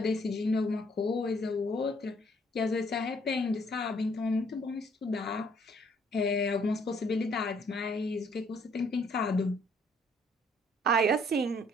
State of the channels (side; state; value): both; normal; correlation 0.64